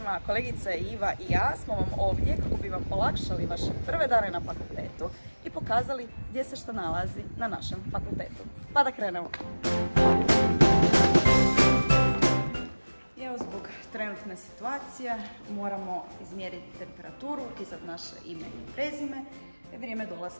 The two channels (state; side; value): inverted; both; correlation -1.00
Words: kolegice Iva i ja smo vam ovdje kako bi vam olakšali vaše prve dane na fakultetu i pokazali gdje se što nalazi na našem fakultetu. Pa da krenemo. Evo, zbog trenutne situacije moramo izmjeriti temperaturu, upisati naše ime i prezime, vrijeme